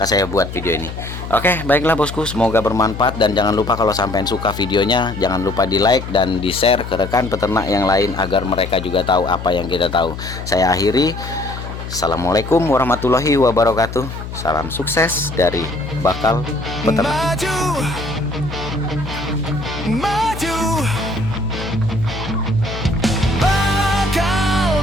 saya buat video ini. Oke, baiklah bosku, semoga bermanfaat, dan jangan lupa kalau sampean suka videonya, jangan lupa di like dan di share ke rekan peternak yang lain agar mereka juga tahu apa yang kita tahu. Saya akhiri, assalamualaikum warahmatullahi wabarakatuh. Salam sukses dari Bakal Peternak.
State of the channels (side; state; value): left; noise; hum, 9 dB below the sound